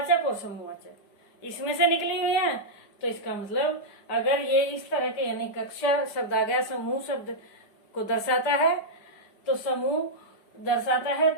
और समूहवाचक इसमें से निकली हुई है। तो इसका मतलब अगर ये इस तरह के यानी कक्षा शब्द आ गया, समूह शब्द को दर्शाता है, तो समूह दर्शाता है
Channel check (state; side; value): late; right; 5.1 ms